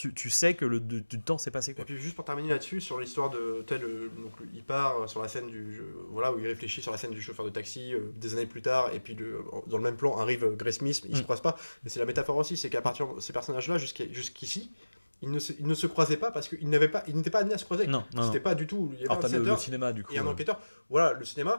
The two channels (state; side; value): inverted; both; correlation -1.00